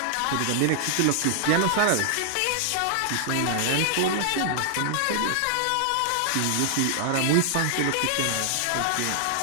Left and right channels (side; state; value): both; different; correlation 0.00